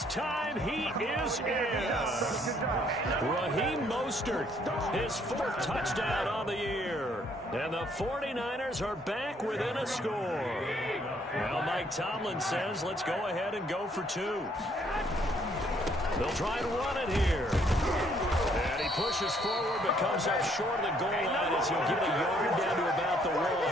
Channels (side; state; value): both; normal; correlation 0.66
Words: time he is in. Yes. Raheem Mostert, his 4th touchdown on the year. And the 49ers are back within a score. Well, Mike, Mike Tomlin says, let's go ahead and go for 2. They'll try and run it here. And he pushes forward but comes up short of the goal line as he'll get a yard down to about the 1. 14,